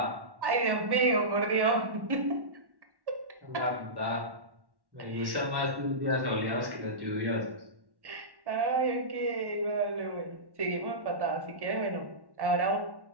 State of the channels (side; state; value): left; late; 1.1 ms